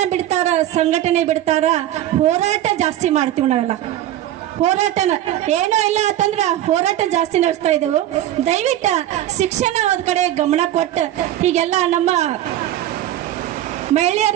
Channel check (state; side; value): quieter; left; 12.9 dB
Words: ಬಿಡ್ತಾರ, ಸಂಘಟನೆ ಬಿಡ್ತಾರ, ಹೋರಾಟ ಜಾಸ್ತಿ ಮಾಡ್ತೀವಿ ನಾವೆಲ್ಲ. ಹೋರಾಟನ ಏನೋ ಇಲ್ಲ ಅಂತಂದ್ರ ಹೋರಾಟ ಜಾಸ್ತಿ ನಡೆಸ್ತಾ ಇದ್ದೆವು. ದಯವಿಟ್ಟು ಶಿಕ್ಷಣ ಒಂದ್ ಕಡೆ ಗಮನ ಕೊಟ್ಟು ಹೀಗೆಲ್ಲ ನಮ್ಮ